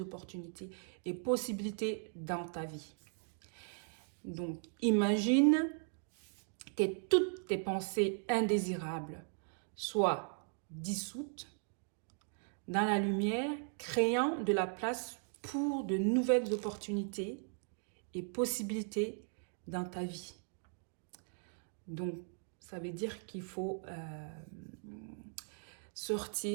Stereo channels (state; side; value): silent; left; 52 dB below the other